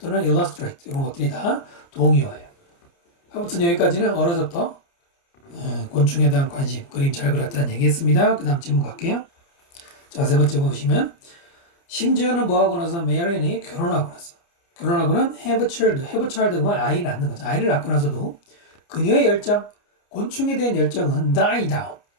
illustrate 이런 것들이 다 동의어예요. 아무튼 여기까지는 어려서부터 곤충에 대한 관심, 그림 잘 그렸다는 얘기했습니다. 그 다음 질문 갈게요. 자, 세 번째 보시면 심지어는 뭐하고 나서 메리안이 결혼하고 나서 결혼하고는 have a child 그러면 아이를 낳는 거죠. 아이를 낳고 나서도 그녀의 열정, 곤충에 대한 열정은 die down,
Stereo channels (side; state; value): right; late; 29 ms